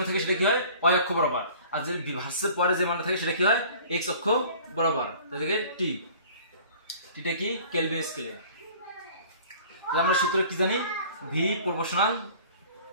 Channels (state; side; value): inverted; both; correlation -0.48